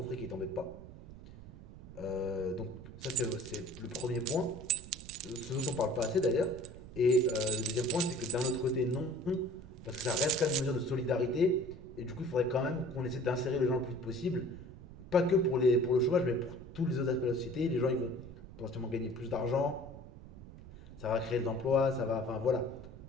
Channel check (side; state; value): right; noise; rumble, 16 dB below the sound